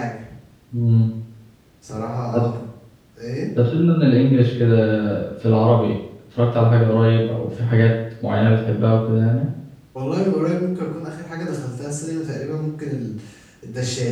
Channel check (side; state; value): both; identical; correlation 1.00